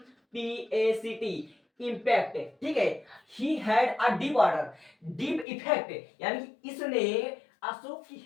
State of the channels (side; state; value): right; drops out; at 5.5 s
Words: इंपैक्ट, ठीक है। He had a deep order, deep effect, यानी कि इसने अशोक की